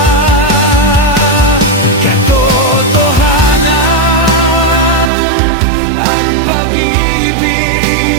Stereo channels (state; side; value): drops out; left; at 5.1 s